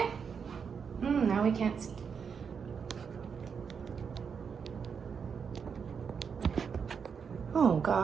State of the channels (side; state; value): left; quieter; 6.4 dB